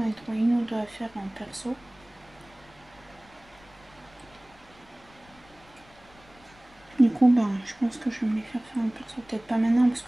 ai trouvé une ou deux à faire en perso. Du coup, je pense que je vais me les faire en perso. Peut-être pas maintenant, parce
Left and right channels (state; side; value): noise; left; rumble, 27 dB below the sound